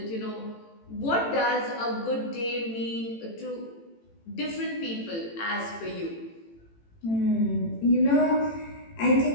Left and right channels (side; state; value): right; late; 18 ms